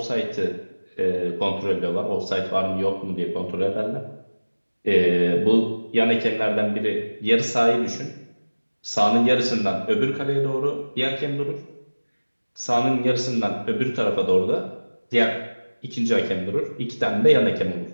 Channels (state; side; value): inverted; both; correlation -1.00